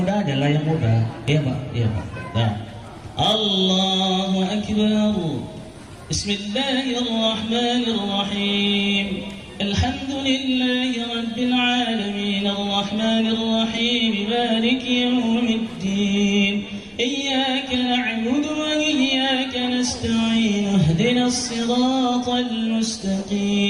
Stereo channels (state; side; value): identical; both; correlation 1.00